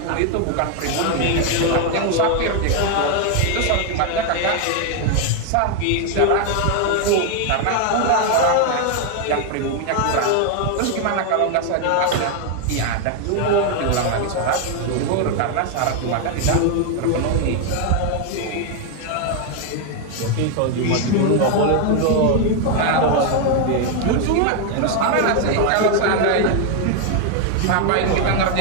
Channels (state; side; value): different; both; correlation 0.01